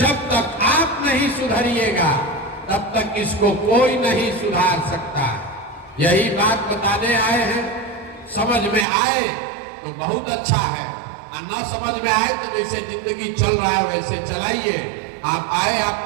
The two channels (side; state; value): left; drops out; at 8.8 s